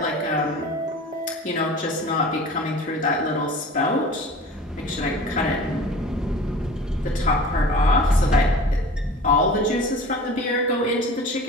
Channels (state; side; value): normal; both; correlation 0.40